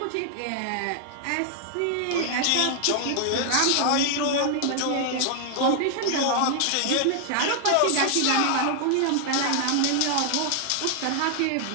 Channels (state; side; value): different; both; correlation 0.00